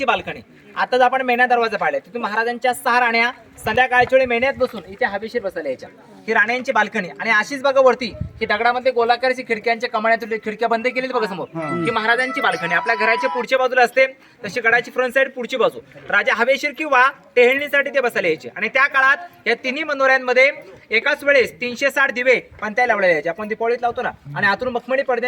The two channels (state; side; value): identical; both; correlation 1.00